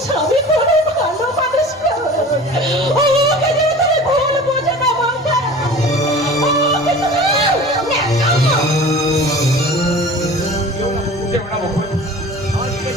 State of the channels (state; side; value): normal; both; correlation 0.40